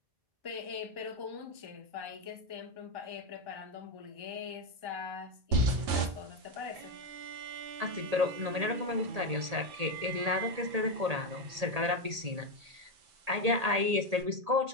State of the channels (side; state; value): left; late; 1.8 ms